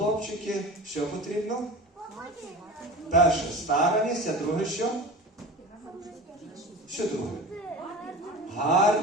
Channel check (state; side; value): normal; both; correlation 0.34